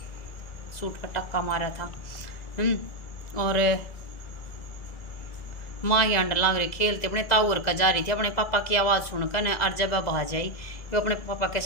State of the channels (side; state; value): right; late; 2.0 ms